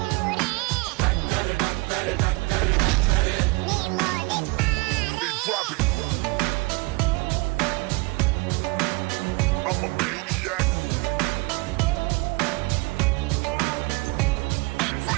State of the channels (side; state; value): left; quieter; 27.4 dB